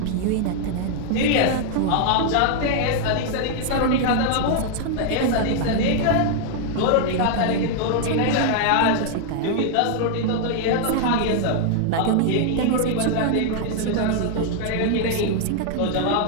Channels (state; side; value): different; both; correlation 0.00